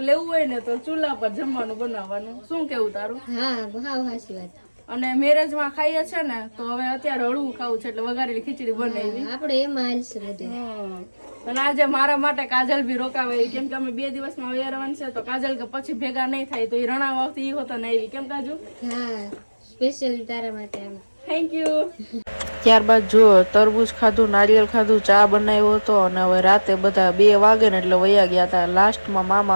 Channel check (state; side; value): inverted; both; correlation -1.00